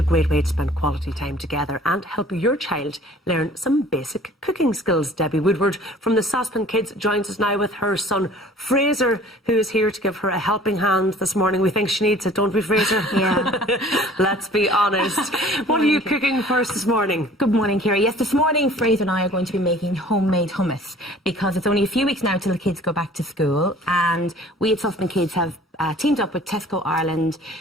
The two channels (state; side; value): normal; both; correlation 0.50